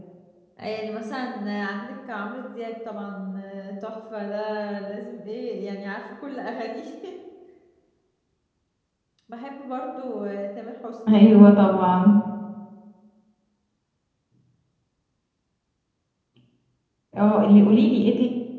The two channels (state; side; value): identical; both; correlation 1.00